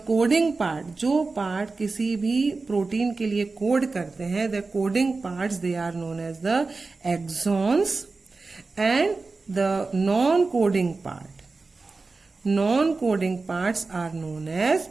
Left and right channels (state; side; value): quieter; left; 3.9 dB